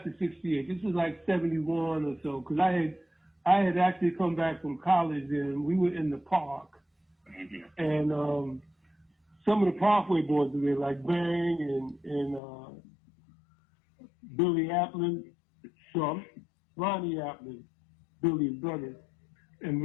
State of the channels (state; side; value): drops out; right; at 12.4 s